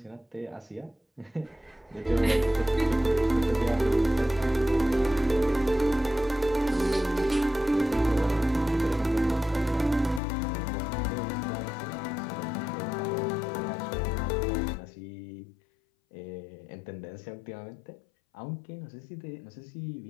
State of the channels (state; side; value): drops out; right; at 10.2 s